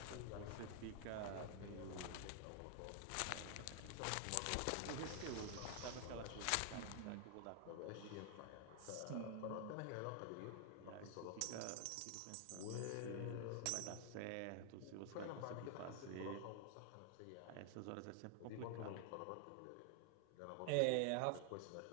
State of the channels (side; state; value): both; different; correlation 0.00